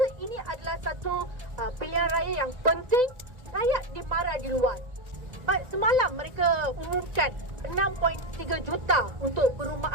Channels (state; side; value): late; left; 2.0 ms